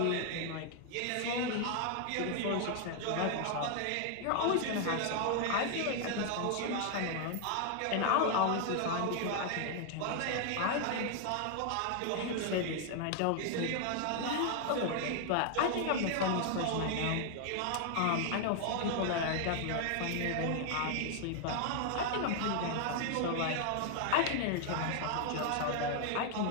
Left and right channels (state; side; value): different; both; correlation 0.00